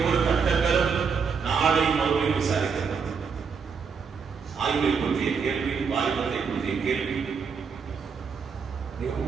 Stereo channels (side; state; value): left; quieter; 5.9 dB